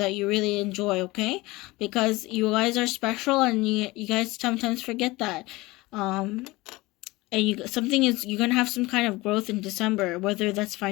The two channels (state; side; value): quieter; right; 21.0 dB